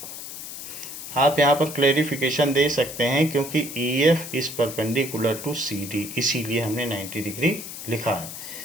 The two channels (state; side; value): noise; left; hiss, 10 dB below the sound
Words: आप यहाँ पर क्लेरिफिकेशन दे सकते हैं क्योंकि E F is perpendicular to C D, इसीलिए हमने 90 डिग्री लिखा है।